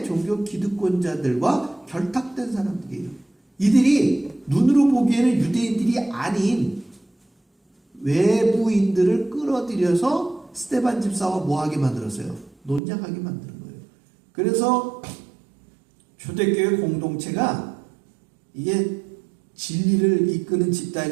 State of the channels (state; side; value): drops out; left; at 12.8 s